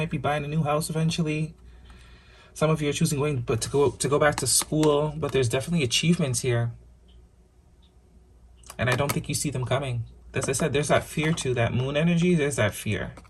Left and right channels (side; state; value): both; identical; correlation 1.00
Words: be buying a new house eventually. Some of you are choosing to go back to school, but there's definitely achievements here. And I don't think you see them coming. As I said, there's that fear too, that moon energy, there's that fear.